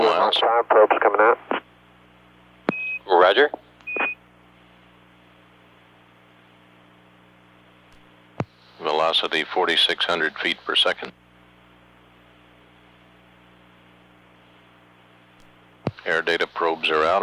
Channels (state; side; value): identical; both; correlation 1.00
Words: Okay, 5 probes coming out. Roger. Velocity 4,600 feet per second. Air data probes are out